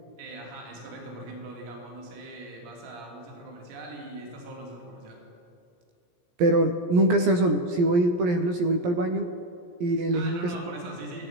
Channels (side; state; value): left; late; 17 ms